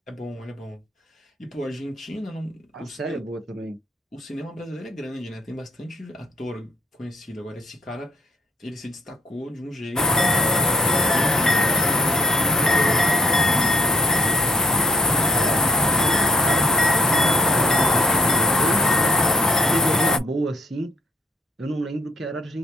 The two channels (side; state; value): both; normal; correlation 0.63